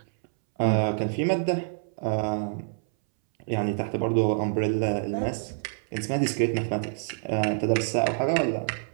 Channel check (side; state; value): left; silent; 60 dB below the other